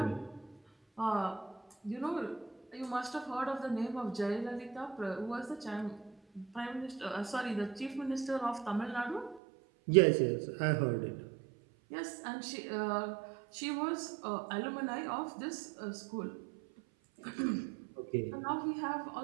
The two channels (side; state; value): left; drops out; at 9.4 s